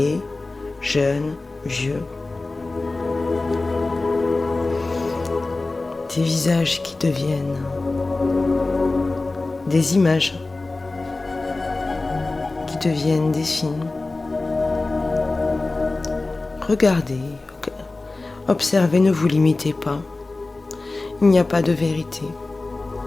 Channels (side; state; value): right; quieter; 3.3 dB